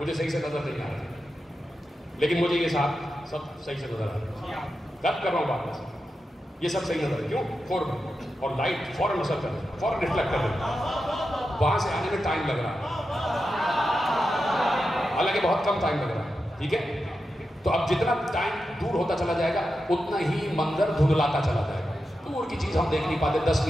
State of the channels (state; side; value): normal; both; correlation 0.89